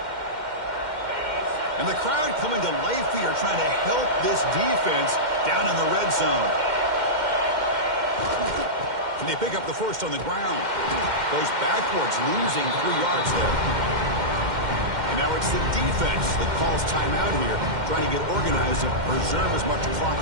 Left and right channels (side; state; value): left; late; 2.1 ms